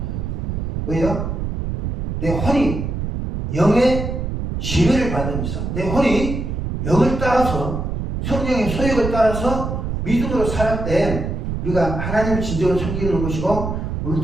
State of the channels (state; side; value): noise; right; rumble, 3 dB below the sound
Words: 왜요? 내 혼이 영의 지배를 받으면서 내 혼이 영을 따라서 성령의 소욕을 따라서 믿음으로 살할 때 우리가 하나님을 진정으로 섬기는 것이고 우리